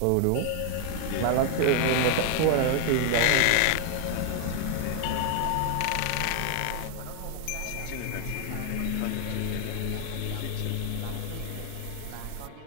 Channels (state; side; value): different; both; correlation 0.00